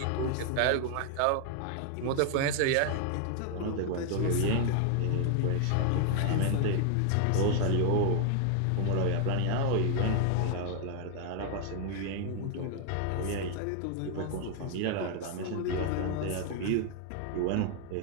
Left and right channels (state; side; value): different; both; correlation 0.00